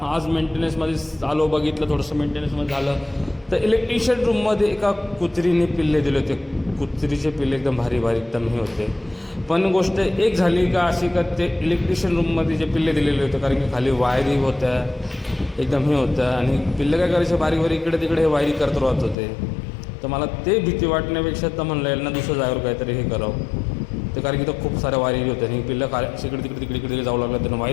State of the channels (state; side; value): drops out; right; at 19.2 s